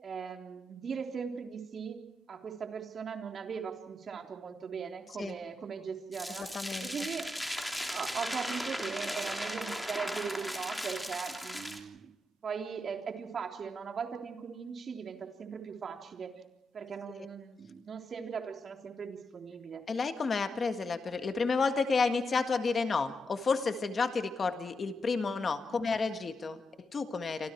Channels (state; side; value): normal; both; correlation 0.84